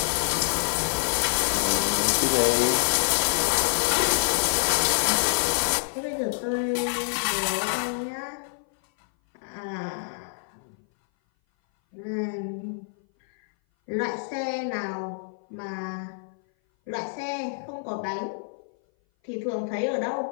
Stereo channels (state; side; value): silent; right; 58 dB below the other